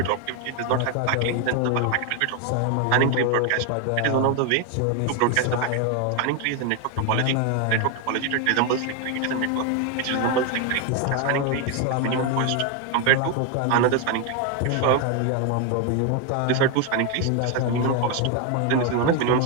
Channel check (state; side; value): different; both; correlation 0.01